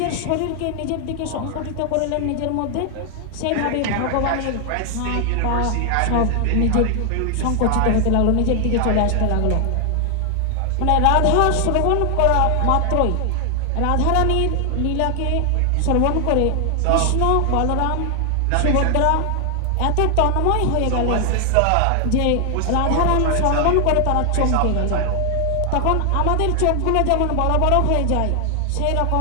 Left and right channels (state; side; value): different; both; correlation 0.00